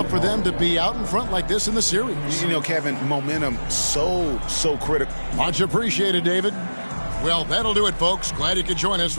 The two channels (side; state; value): both; inverted; correlation -1.00